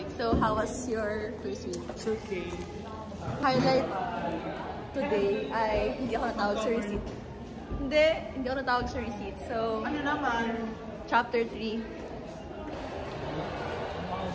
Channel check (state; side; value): identical; both; correlation 1.00